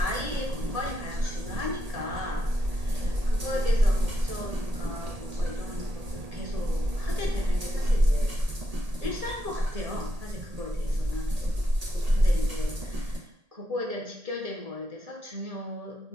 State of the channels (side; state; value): left; late; 1.8 ms